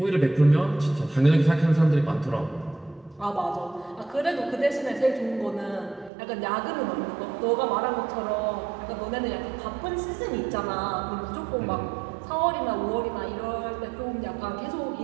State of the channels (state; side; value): drops out; left; at 6.1 s